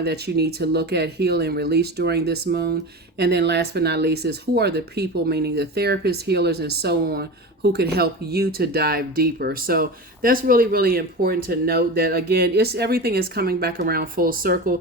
that you need to look at, heal, and release during this moon? And then last but not least is, who are the people, meaning the therapists, healers, and so on, who could help you to dive deeper? So that's really, really important to note that, again, everything is coming back around full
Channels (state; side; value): normal; both; correlation 0.28